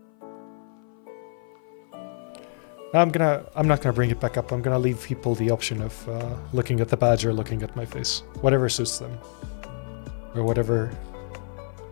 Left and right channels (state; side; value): silent; right; 56 dB below the other